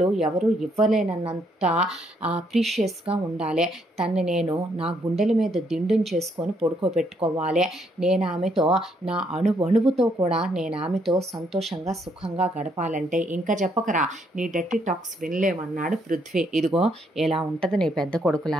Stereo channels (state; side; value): normal; both; correlation 0.72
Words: ఎవరు ఇవ్వలేనన్నంత ప్రీషియస్గా ఉండాలి. తన్ని నేను నా గుండెల మీద దిండుని చేసుకొని పడుకోబెట్టుకోవాలి. నేను ఆమెతో నా అణువుతో కూడా నేను ఆమెతో సంతోషంగా సుఖంగా గడపాలంటే ఇంకా చెప్పకరా, నీ డర్టీ టాక్స్ వినలేమన్నాడు పృథ్వీ. ఇదిగో ఇలా ఉంటుంది నీ పెద్ద